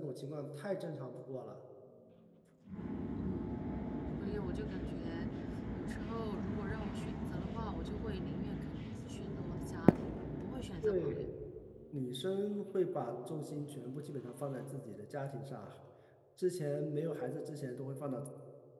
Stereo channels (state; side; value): identical; both; correlation 1.00